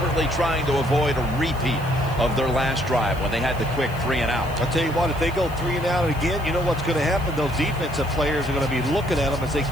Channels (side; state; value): left; noise; hiss, 22 dB below the sound